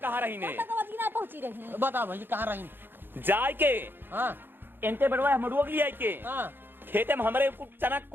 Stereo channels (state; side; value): late; left; 0.099 ms